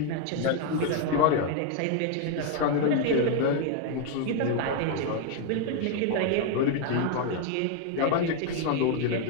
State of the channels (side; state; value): both; different; correlation 0.01